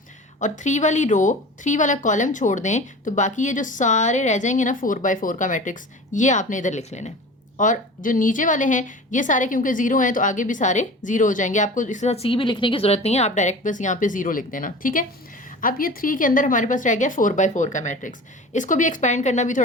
और 3 वाली रो 3 वाला कॉलम छोड़ दें तो बाकी ये जो सारे रह जाएंगे ना 4/4 का मैट्रिक्स, ये आपने इधर लिख लेना है। और जो नीचे वाले हैं ये सारे क्योंकि जीरो हैं तो आगे भी सारे जीरो हो जाएंगे, आपको इसके साथ C भी लिखने की जरूरत नहीं है, आप डायरेक्ट बस यहाँ पे जीरो लिख देना, ठीक है। अब ये 3 के अंदर हमारे पास रह गया 4/4 का मैट्रिक्स, इसको भी एक्सपैंड करना भी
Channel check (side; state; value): both; normal; correlation 0.37